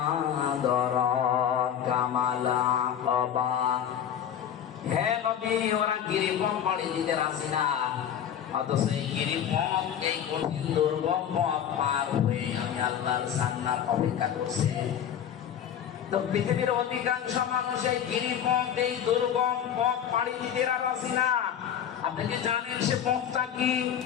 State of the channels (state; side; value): quieter; right; 9.4 dB